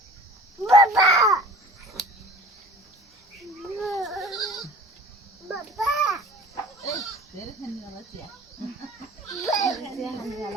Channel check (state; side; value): normal; both; correlation 0.44